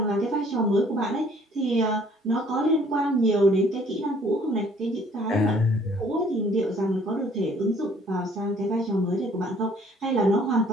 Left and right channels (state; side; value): normal; both; correlation 0.58